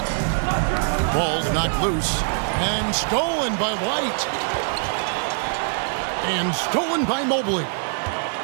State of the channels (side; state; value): left; silent; 63 dB below the other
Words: Ball's knocked loose and stolen by White. And stolen by Mobley.